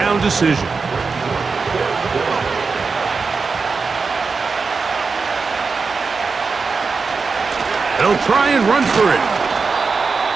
decision. They'll try and run for it.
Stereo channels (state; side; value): quieter; left; 4.7 dB